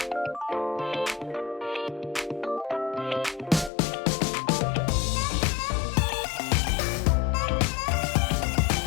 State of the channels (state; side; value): drops out; right; at 3.7 s